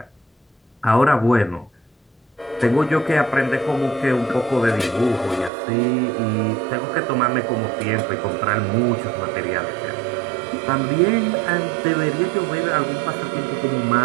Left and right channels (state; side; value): drops out; left; at 5.5 s